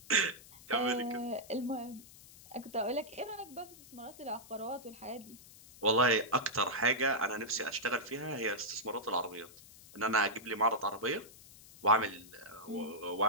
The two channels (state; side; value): noise; left; hiss, 20 dB below the sound